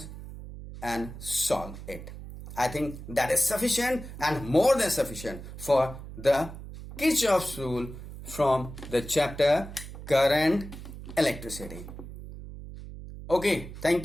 and solve it. I think that is sufficient and more than sufficient for the Kirchhoff's rule from the chapter Current Electricity. Okay, thank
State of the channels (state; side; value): noise; right; hum, 12 dB below the sound